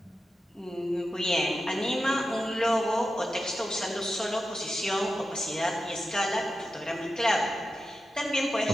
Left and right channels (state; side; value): normal; both; correlation 0.91